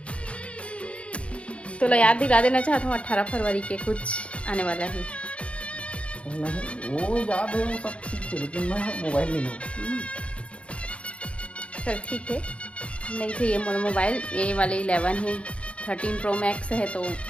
तो याद दिला देना चाहता हूँ 18 फरवरी के कुछ आने वाला है। नहीं वो याद है, वो सब ठीक है, लेकिन मैं मोबाइल नहीं लूँगा। चल ठीक है, नहीं तो ये मोर मोबाइल ये वाले 11 है, 13 प्रो मैक्स है, तो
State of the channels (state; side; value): late; right; 0.061 ms